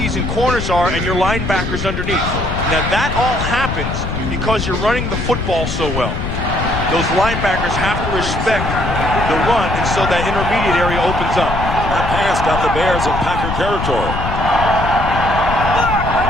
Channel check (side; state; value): left; noise; rumble, 4 dB below the sound